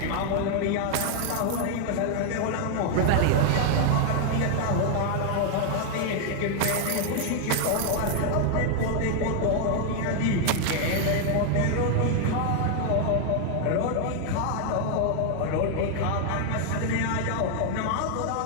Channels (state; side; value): different; both; correlation 0.00